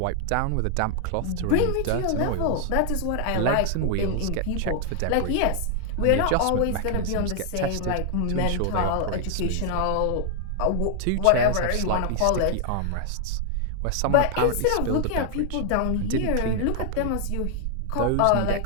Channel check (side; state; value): both; different; correlation 0.00